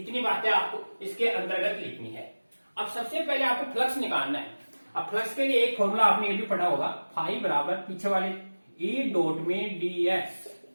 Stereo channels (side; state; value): both; inverted; correlation -1.00